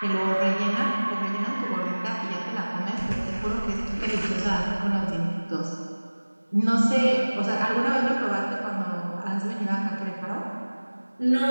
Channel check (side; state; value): both; inverted; correlation -1.00